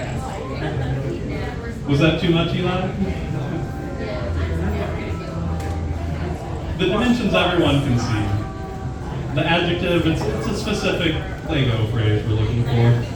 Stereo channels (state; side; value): identical; both; correlation 1.00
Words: Was that too much, Eli? The dimensions everyone can see. The adjective, it's a specific Lego phrase we're looking for.